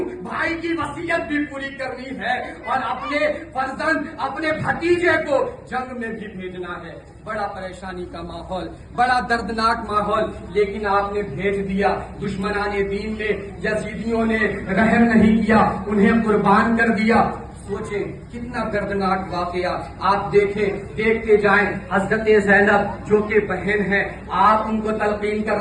بھائی کی وصیت بھی پوری کرنی ہے اور اپنے فرزند، اپنے بھتیجے کو جنگ میں بھی بھیجنا ہے۔ بڑا پریشانی کا ماحول، بڑا دردناک ماحول، لیکن آپ نے بھیج دیا۔ دشمنان دین نے، یزیدیوں نے رحم نہیں کیا، انہیں قربان کر دیا۔ سوچیں کتنا دردناک واقعہ، آپ دیکھتے جائیں۔ حضرت زینب جو کہ بہن ہے، آپ ان کو تلقین کر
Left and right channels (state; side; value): identical; both; correlation 1.00